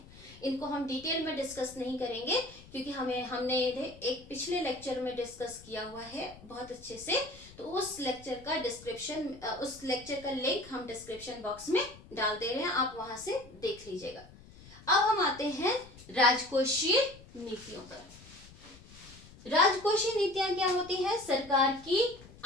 इनको हम डिटेल में डिस्कस नहीं करेंगे क्योंकि हमने एक पिछले लेक्चर में डिस्कस किया हुआ है बहुत अच्छे से। तो उस लेक्चर का डिस्क्रिप्शन, उस लेक्चर का लिंक हम डिस्क्रिप्शन बॉक्स में डाल दे रहे हैं, आप वहां से देख लीजिएगा। अब हम आते हैं राजकोषीय नीतियों पर। राजकोषीय नीतियां क्या होती है? सरकार की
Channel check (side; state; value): left; noise; rumble, 21 dB below the sound